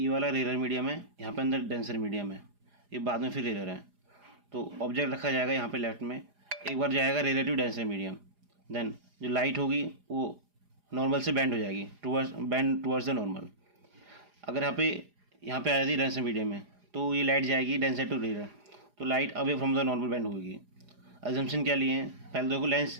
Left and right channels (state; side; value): late; left; 4.9 ms